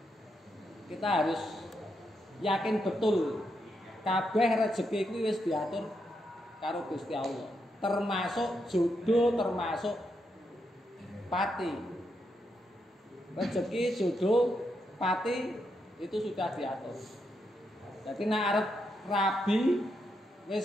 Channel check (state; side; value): normal; both; correlation 0.82